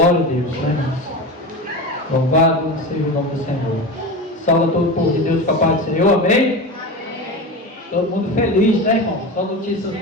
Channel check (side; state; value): both; normal; correlation 0.25